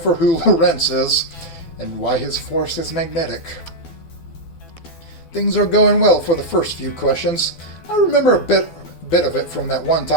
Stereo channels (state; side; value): late; right; 12 ms